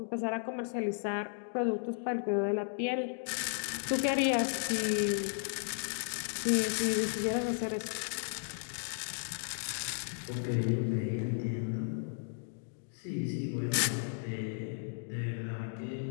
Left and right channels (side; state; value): right; silent; digital silence